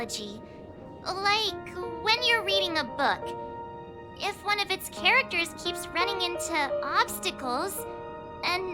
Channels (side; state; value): both; identical; correlation 1.00